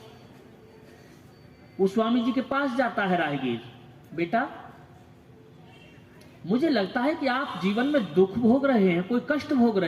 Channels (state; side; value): identical; both; correlation 1.00